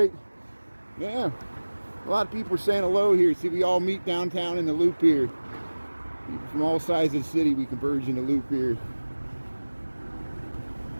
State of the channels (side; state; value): both; inverted; correlation -1.00